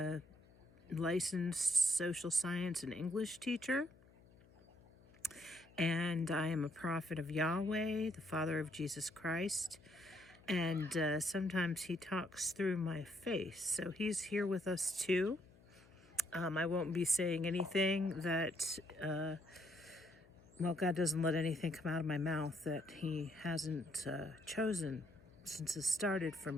licensed social science and English teacher, and I am a prophet of Yahweh, the Father of Jesus Christ, and sometimes he talks through my face, so he's here with us too. I won't be saying anything that, God doesn't let anything come out of my mouth that he hasn't chosen since it started for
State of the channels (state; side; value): noise; left; hum, 26 dB below the sound